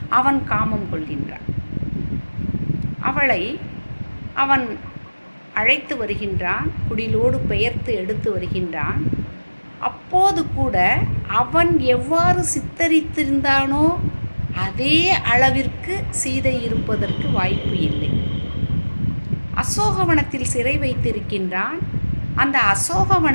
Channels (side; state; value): both; inverted; correlation -1.00